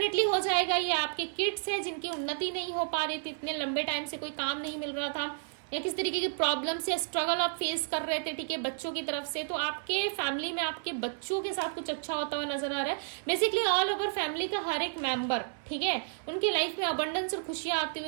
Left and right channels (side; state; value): left; silent; 57 dB below the other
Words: हो जाएगा। ये आपके किड्स है जिनकी उन्नति नहीं हो पा रही थी, इतने लंबे टाइम से कोई काम नहीं मिल रहा था, या किस तरीके की प्रॉब्लम या स्ट्रगल आप फेस कर रहे थे, ठीक है, बच्चों की तरफ से, तो आपके फैमिली में आपके बच्चों के साथ कुछ अच्छा होता हुआ नजर आ रहा है। बेसिकली ऑल ओवर फैमिली का हर एक मेंबर, ठीक है, उनकी लाइफ में अबंडेंस और खुशियां आती